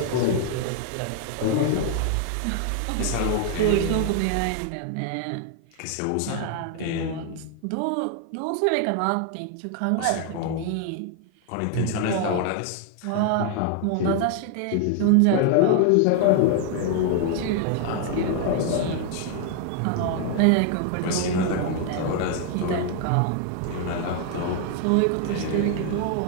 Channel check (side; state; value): both; different; correlation 0.00